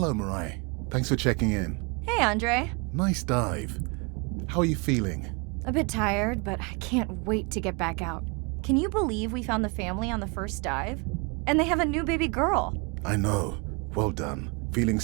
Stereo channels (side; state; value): left; quieter; 30.7 dB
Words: Mirai. Thanks for checking in. Hey, Andre. Nice dive. How are you feeling? A bit tired, but I can't wait to get back out. Can you believe we found the family on the first dive? And they have a new baby girl. I know. Well done. Feeling